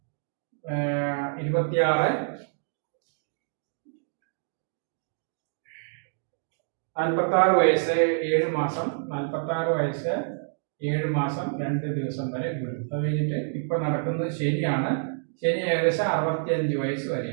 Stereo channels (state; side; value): silent; left; digital silence